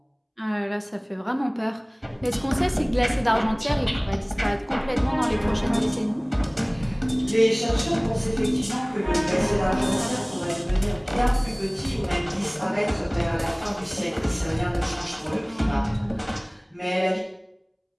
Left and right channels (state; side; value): identical; both; correlation 1.00